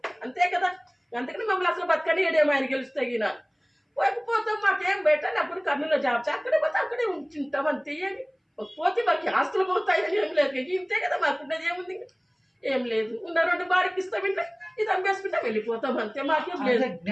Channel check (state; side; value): identical; both; correlation 1.00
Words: అంతే కదా. అందుకని మమ్మల్ని అసలు బతకనియడేమో ఆయన గెలుస్తాయి. పోకపోతే మాకేం పెట్టాలి అప్పుడు కర్నూలులో జాబ్ అక్కడే పోతే అక్కడే ఉంటుంటాం అంతే ఏమి పోతే మాకు ఆస్తులు పోతాయని ఏం లేదు ఇంతే కదా మాకున్నది ఏముంది ఏం లేదు ఉన్న 2 బాడికి ఇస్తామంటే ఇది అమ్మేసుకుంటే వెళ్ళిపోతాం అంతే మాకేం లేదు.